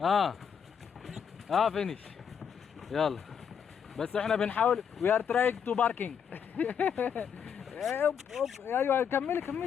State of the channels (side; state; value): right; quieter; 7.4 dB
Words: فينيش. يلا بس احنا بنحاول. وي ار تراينج تو باركينج. ايوه